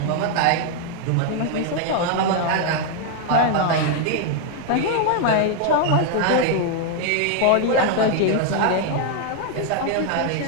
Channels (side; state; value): both; different; correlation 0.00